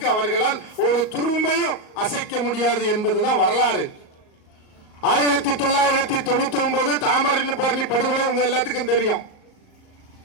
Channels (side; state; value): right; late; 38 ms